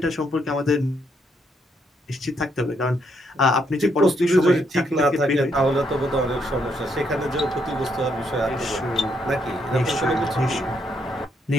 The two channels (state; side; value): normal; both; correlation 0.75